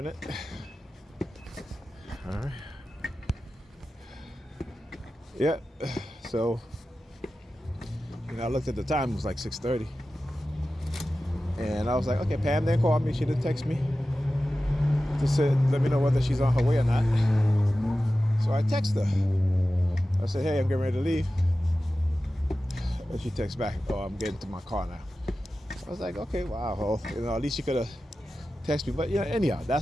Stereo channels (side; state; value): both; normal; correlation 0.94